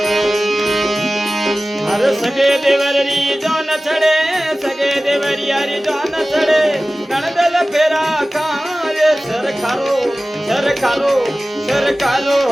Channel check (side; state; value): both; normal; correlation 0.97